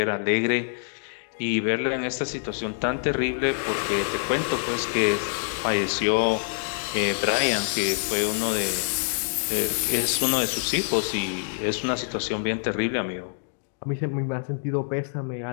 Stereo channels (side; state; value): right; silent; digital silence